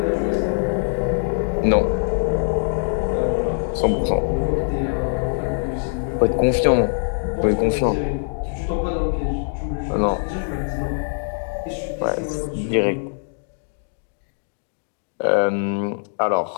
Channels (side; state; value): right; silent; digital silence